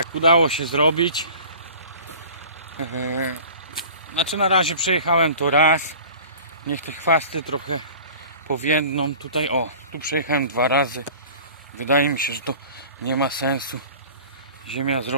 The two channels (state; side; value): inverted; both; correlation -0.43